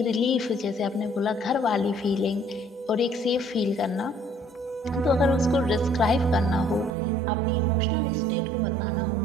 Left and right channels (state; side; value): drops out; left; at 6.9 s